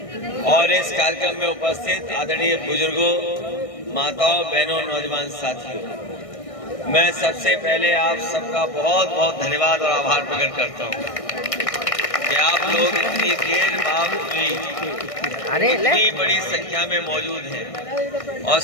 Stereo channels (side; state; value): right; late; 1.6 ms